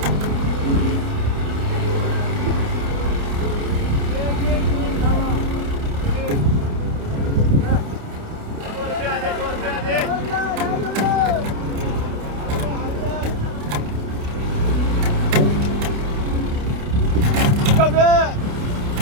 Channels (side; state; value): left; late; 29 ms